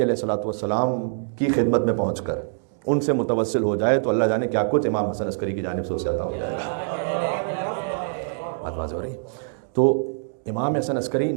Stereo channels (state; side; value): silent; left; digital silence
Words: علیہ السلام کی خدمت میں پہنچ کر ان سے متوسل ہو جائے تو اللہ جانے کیا کچھ امام حسن عسکری کی جانب سے اسے عطا ہو جائے گا. بات واضح ہو رہی. تو امام حسن عسکری